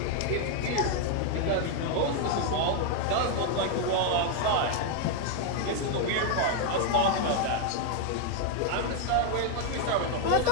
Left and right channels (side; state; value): both; different; correlation 0.01